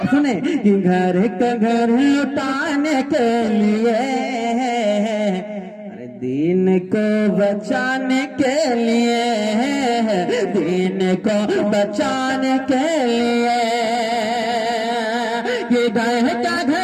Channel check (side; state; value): both; identical; correlation 1.00